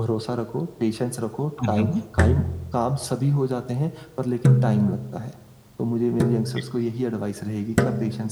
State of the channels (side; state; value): both; identical; correlation 1.00